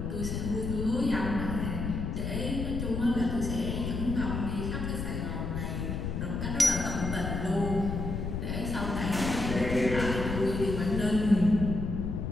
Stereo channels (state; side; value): noise; left; rumble, 3 dB below the sound